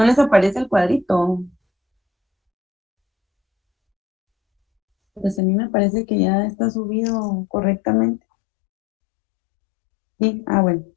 les aparece el cuadrito. Pues a mí me parece que ya está subido correctamente. Sí, bueno,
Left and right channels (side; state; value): right; drops out; at 5.4 s